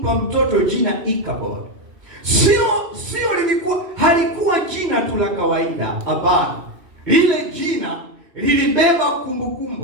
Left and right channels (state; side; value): late; left; 3.0 ms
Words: mtoto jina Ikabod? Halikuwa jina tu la kawaida, hapana. Lile jina lilibeba